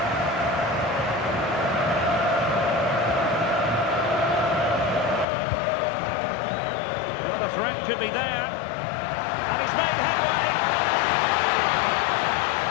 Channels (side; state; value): right; drops out; at 5.2 s